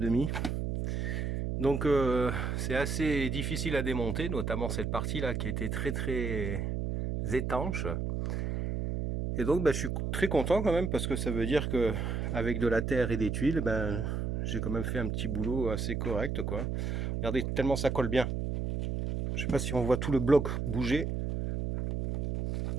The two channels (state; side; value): noise; right; hum, 1 dB below the sound